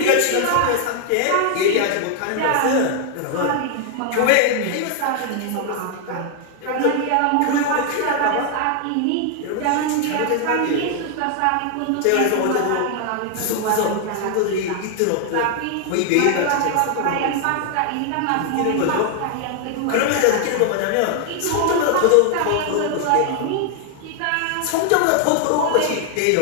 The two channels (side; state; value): both; different; correlation 0.00